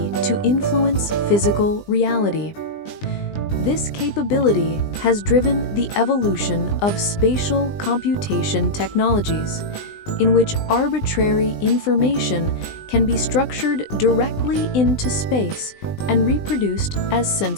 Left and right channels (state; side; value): late; right; 20 ms